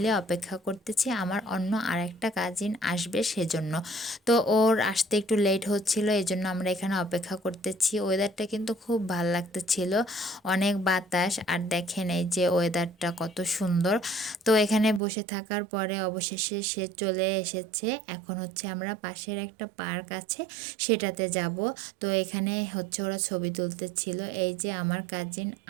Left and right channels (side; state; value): left; drops out; at 15.0 s